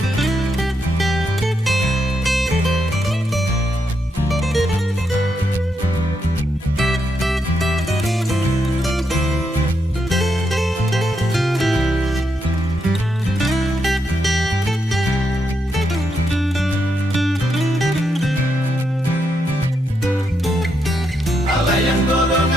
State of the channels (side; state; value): both; normal; correlation 0.81